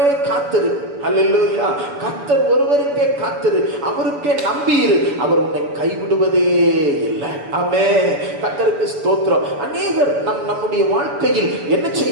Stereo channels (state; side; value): late; left; 6.9 ms